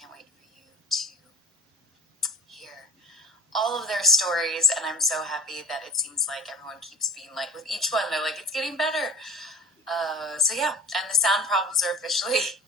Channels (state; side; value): normal; both; correlation 0.39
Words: wait for you to hear all of their stories, and I'm so happy that it seems like everyone keeps being like, with each one, they're like, it's getting better. So yeah, and the sound problems are officially